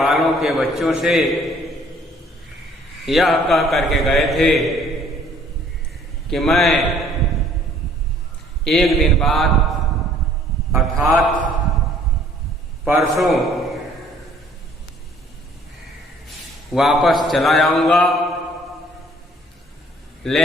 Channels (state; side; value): normal; both; correlation 0.58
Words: के बच्चों से यह कह करके गए थे कि मैं एक दिन बाद अर्थात परसों वापस चला जाऊंगा,